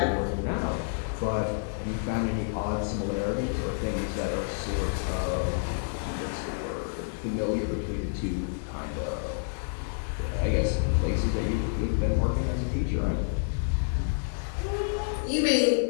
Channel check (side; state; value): right; silent; 59 dB below the other